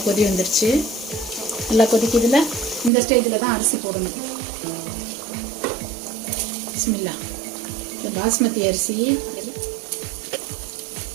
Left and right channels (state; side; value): drops out; left; at 2.9 s